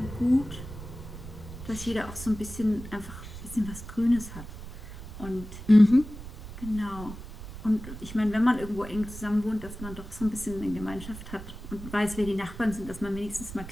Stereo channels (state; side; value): noise; right; rumble, 12 dB below the sound